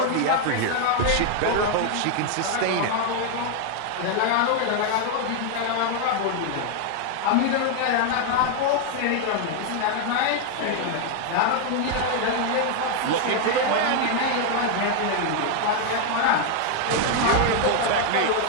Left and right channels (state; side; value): different; both; correlation 0.00